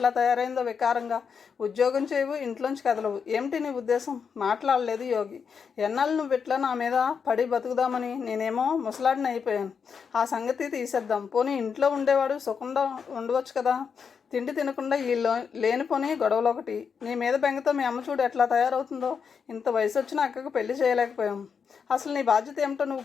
తయారైందో వికారంగా. ఉద్యోగం చేయవు, ఇంట్లోంచి కదలవు. ఏమిటి నీ ఉద్దేశం? మాట్లాడలేదు యోగి. ఎన్నాళ్ళు నువ్వు ఇట్లా నా మీద పడి బతుకుదామని? నేనేమో ముసలాడిని అయిపోయాను. ఆ సంగతి తీసేద్దాం. పోనీ ఇంట్లో ఉండేవాడు సుఖంగా ఉండవచ్చు కదా. తిండి తినకుండా ఈ లేనిపోని గొడవలు ఒకటి. నీ మీద బెంగతో మీ అమ్మ చూడు ఎట్లా తయారవుతుందో. ఇంత వయసు వచ్చిన అక్కకు పెళ్లి చేయలేకపోయాం. అసలు నీ బాధ్యత ఏమిటో నువ్వు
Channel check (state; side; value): quieter; right; 6.3 dB